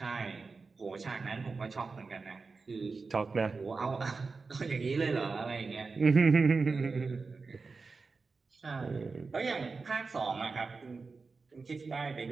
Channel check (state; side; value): quieter; left; 4.3 dB